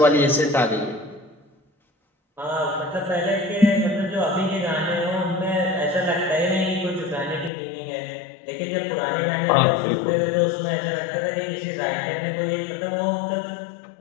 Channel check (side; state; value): right; drops out; at 7.5 s